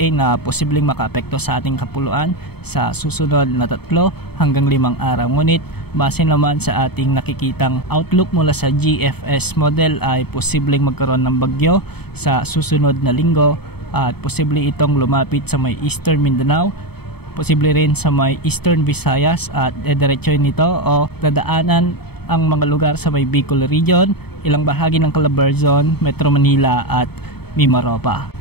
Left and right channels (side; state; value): right; late; 0.97 ms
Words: na posibleng makaapekto sa ating kapuluan sa susunod na 3 hanggang 5 araw. Ngunit base naman sa ating nakikitang outlook mula sa GFS model ay posibleng magkaroon ng bagyo sa susunod na linggo at posible itong lumapit sa may Eastern Mindanao, posible rin sa may Eastern Visayas at diretsoy nito o dadaanan ang mga lugar sa may Bicol Region, ilang bahagi ng Calabarzon, Metro Manila at Mimaropa.